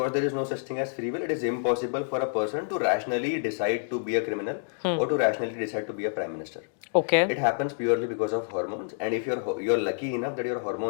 there is no such thing as free will, it is impossible for a person to rationally decide to be a criminal or to rationally decide to be a prime minister. Okay. It happens purely because of hormones, and if you're lucky enough that your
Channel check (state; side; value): silent; right; digital silence